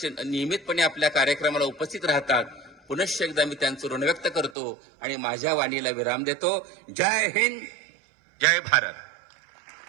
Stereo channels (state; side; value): drops out; left; at 4.5 s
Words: आपल्या कार्यक्रमाला उपस्थित राहतात. पुनश्च एकदा मी त्यांचं ऋण व्यक्त करतो आणि माझ्या वाणीला विराम देतो. जय हिंद, जय भारत.